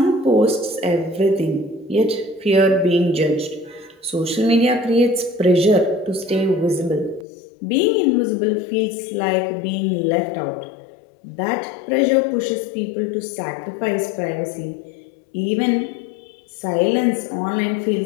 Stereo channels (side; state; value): right; drops out; at 7.2 s